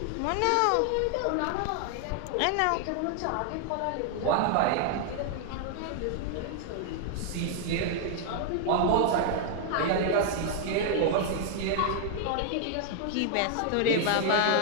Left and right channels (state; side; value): different; both; correlation 0.00